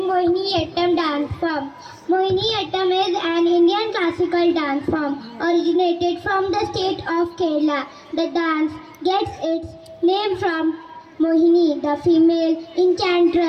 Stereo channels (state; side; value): identical; both; correlation 1.00